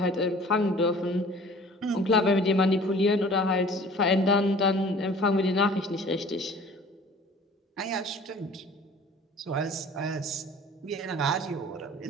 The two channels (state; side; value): normal; both; correlation 0.47